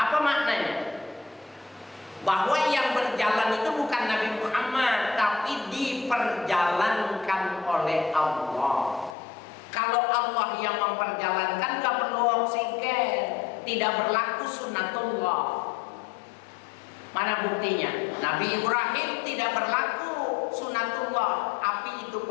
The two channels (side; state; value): right; drops out; at 9.2 s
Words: maknanya? Bahwa yang berjalan itu bukan Nabi Muhammad, tapi diperjalankan oleh Allah. Kalau Allah yang memperjalankan, gak perlu oksigen, tidak berlaku sunnatullah. Mana buktinya? Nabi Ibrahim tidak berlaku sunnatullah, api itu